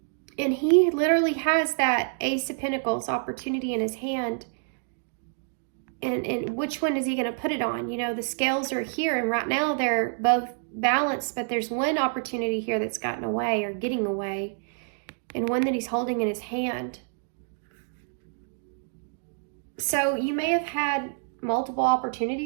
and he literally has that Ace of Pentacles opportunity in his hand. And which one is he going to put it on? You know, the scales are here, and right now they're both balanced, but there's one opportunity here that's gotten away or getting away, and one that he's holding in his hand. So you may have had multiple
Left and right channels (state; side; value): silent; left; digital silence